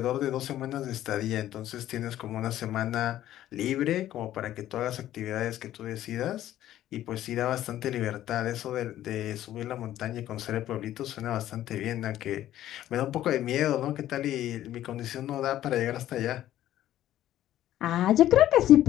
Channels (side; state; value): right; quieter; 13.0 dB